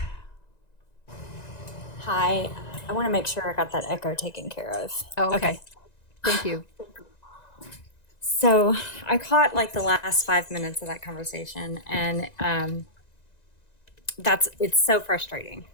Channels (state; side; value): late; right; 1.9 ms